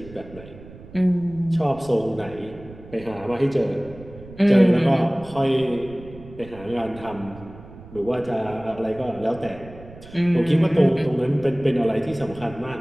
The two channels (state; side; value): noise; right; rumble, 18 dB below the sound